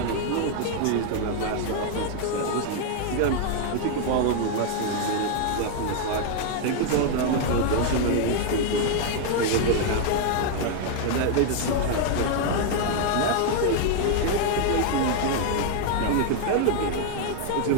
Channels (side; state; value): both; different; correlation 0.00